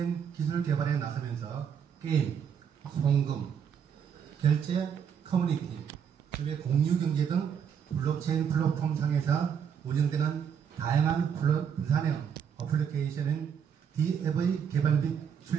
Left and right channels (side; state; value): left; quieter; 7.7 dB